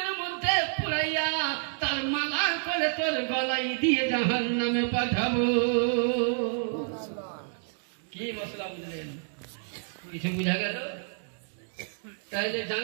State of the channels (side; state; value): left; silent; 57 dB below the other